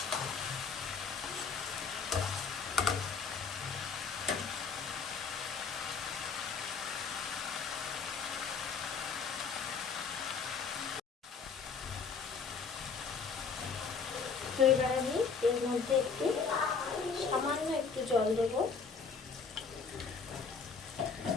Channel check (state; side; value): quieter; right; 5.4 dB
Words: তো এবার আমি এর মধ্যে একটু সামান্য একটু জল দেব,